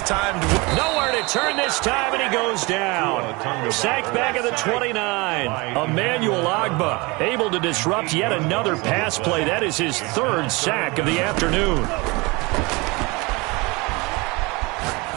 timed. Nowhere to turn this time, and he goes down. Sacked back at the 29. Emmanuel Ogbah able to disrupt yet another pass play. That is his third sack of the afternoon.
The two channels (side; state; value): left; quieter; 25.7 dB